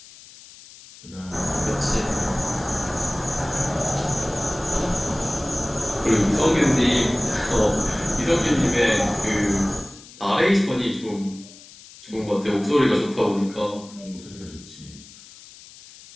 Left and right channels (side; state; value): left; noise; hiss, 20 dB below the sound